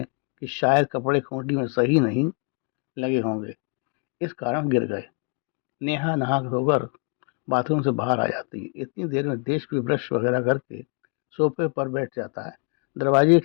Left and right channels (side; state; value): right; quieter; 37.6 dB